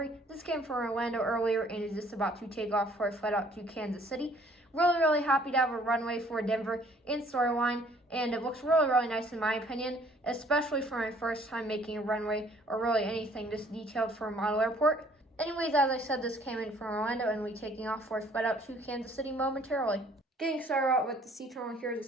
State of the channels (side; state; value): both; normal; correlation 0.59